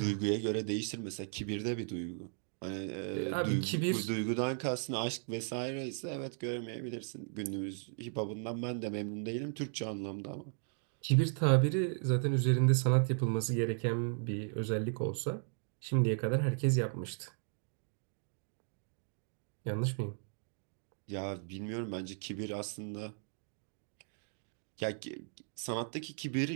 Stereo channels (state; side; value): silent; left; 54 dB below the other